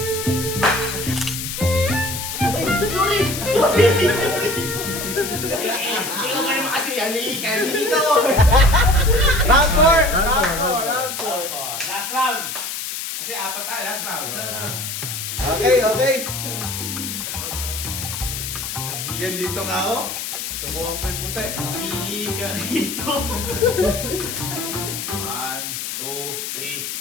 ko naman kasi halika dito. Round 4. Round four. Round 4. Last round. Kasi apat tayo, last round. Okay, okay. Yan dito nga ako. Subukan ko yung puti. Halika dito. 1, 2,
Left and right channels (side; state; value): left; noise; hiss, 5 dB below the sound